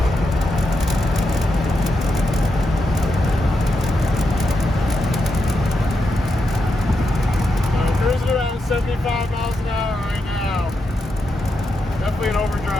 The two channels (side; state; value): both; normal; correlation 0.85